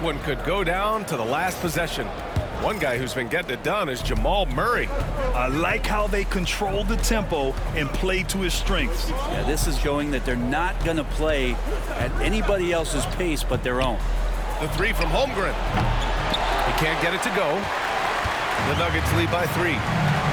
one could go down to the last possession. One guy who's been getting it done is Jamal Murray. I like how they control the tempo and play to his strengths. Yeah, this is showing that they're not going to play at anybody else's pace but their own. The 3 from Holmgren. He can't get it to go. The Nuggets lead by 3.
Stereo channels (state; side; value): identical; both; correlation 1.00